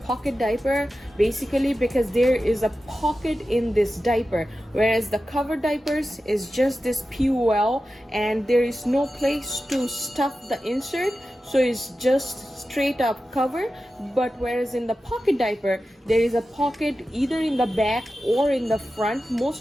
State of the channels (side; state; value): both; normal; correlation 0.93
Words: diaper, basically because there is a pocket in this diaper, whereas the cover diapers is just this POL and there is no place to stuff the insert, so it's just straight up cover. But whereas in the pocket diaper, there is a pocket either in the back or in the front.